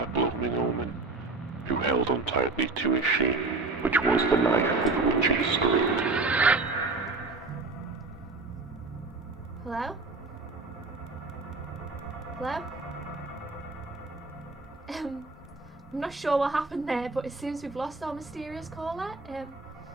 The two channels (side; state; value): left; quieter; 3.6 dB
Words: blooming omen, who held on tightly to his shame, which was the knife with which he screamed. Hello? Hello? I'm not sure what happened there, but it seems we've lost our mysterious caller.